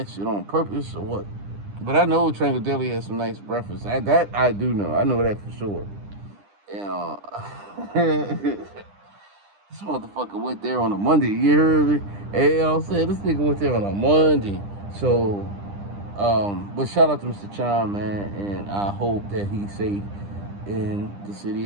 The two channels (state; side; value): late; left; 10 ms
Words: shit on purpose or what, but I know Triangle Deli has some nice breakfast. That I do know. I know that for sure. This motherfucker went there on a Monday. You heard me? Hey, I'm saying, this nigga went there on a Monday. So, but shout out to Mr. Chime, man, and I hope that he's safe in the city